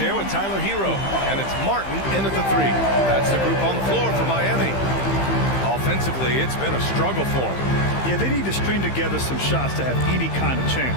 with Tyler Hero. And it's Martin in at the 3. That's the group on the floor for Miami. Offensively, it's been a struggle for them. Yeah, they need to string together some shots to have any kind of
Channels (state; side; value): late; right; 15 ms